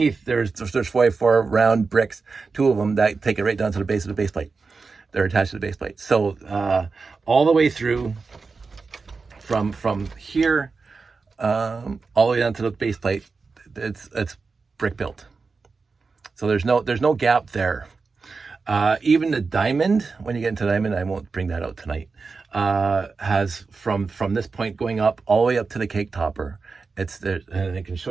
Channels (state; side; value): quieter; left; 4.5 dB